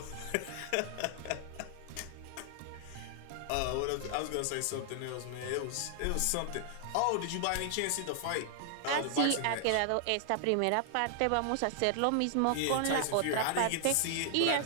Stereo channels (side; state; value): both; different; correlation -0.01